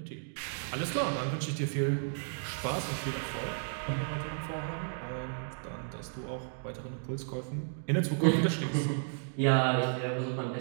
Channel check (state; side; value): silent; left; digital silence